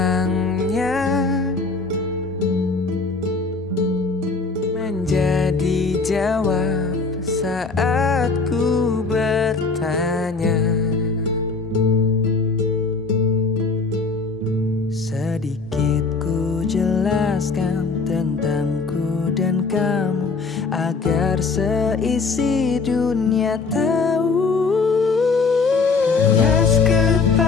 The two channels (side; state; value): right; quieter; 4.3 dB